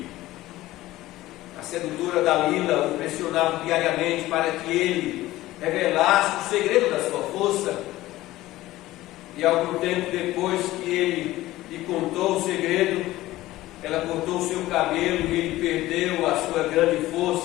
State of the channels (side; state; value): right; quieter; 16.7 dB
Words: A sedutora Dalila o pressionava diariamente para que ele revelasse o segredo da sua força. E algum tempo depois que ele lhe contou o segredo, ela cortou o seu cabelo e ele perdeu a sua grande